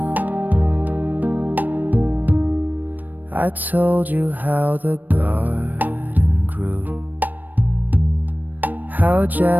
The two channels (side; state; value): left; late; 0.087 ms